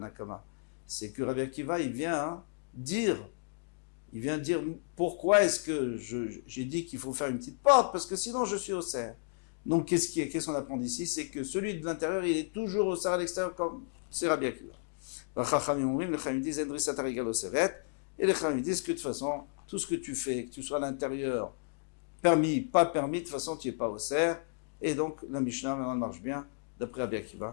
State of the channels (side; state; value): right; silent; digital silence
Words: C'est que Rabbi Akiva, il vient dire pourquoi est-ce que j'ai dit qu'il faut faire une petite porte, parce que sinon je suis au cerf. Donc qu'est-ce qu'on apprend d'ici? C'est que celui de l'intérieur, il est toujours au cerf à l'extérieur, comme c'est Rabbi Akiva. Les Chachamim disent Endrissat Arigal au Seret, et les Chachamim disent que de toute façon, tout ce que tu fais, que tu sois à l'intérieur, permis, pas permis, de toute façon tu n'es pas au cerf. Et donc la Mishnah maintenant marche bien, d'après Rabbi